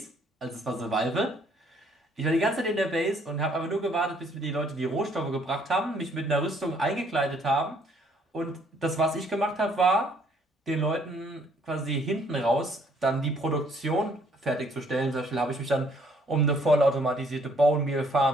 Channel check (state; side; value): normal; both; correlation 0.64